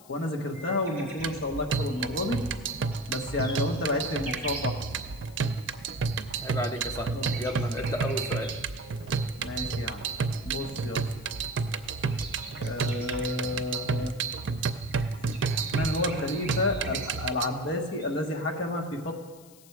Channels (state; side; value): noise; left; hiss, 23 dB below the sound